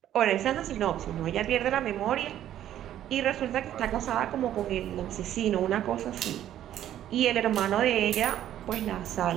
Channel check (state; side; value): quieter; left; 11.7 dB